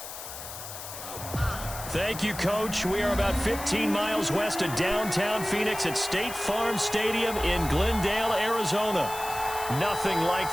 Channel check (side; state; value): left; noise; hiss, 10 dB below the sound